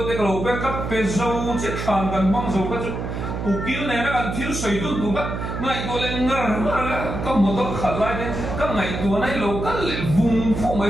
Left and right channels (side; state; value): right; noise; hum, 5 dB below the sound